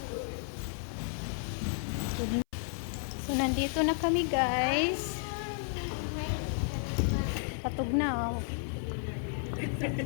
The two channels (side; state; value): right; silent; 56 dB below the other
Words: So, nandito na kami, guys. Patog na, oh.